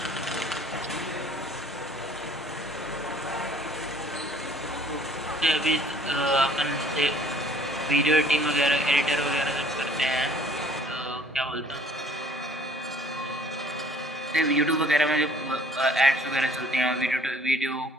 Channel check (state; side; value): normal; both; correlation 0.56